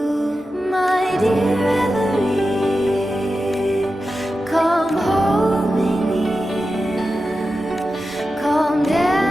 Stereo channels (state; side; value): normal; both; correlation 0.92